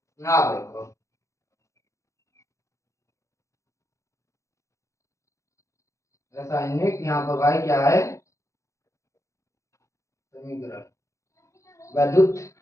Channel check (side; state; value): right; late; 0.15 ms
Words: ना देखो रासायनिक, यहाँ पर भाई क्या है, समीकरण, वैद्युत